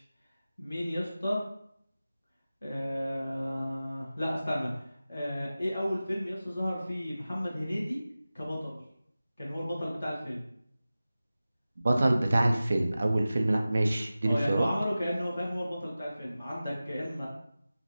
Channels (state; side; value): inverted; both; correlation -0.96